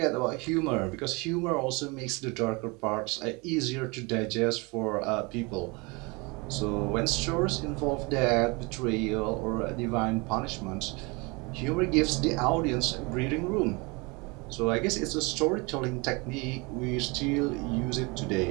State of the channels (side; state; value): left; quieter; 27.6 dB